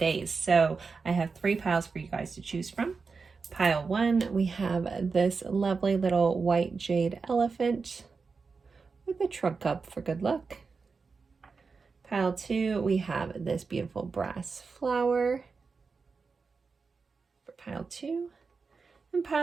So I have 3 piles for you guys to choose from. Pile 1, we have this lovely little white jade elephant with a trunk cup for good luck. Pile 2, we have this beautiful brass flower for pile 2. And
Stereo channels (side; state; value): left; quieter; 4.8 dB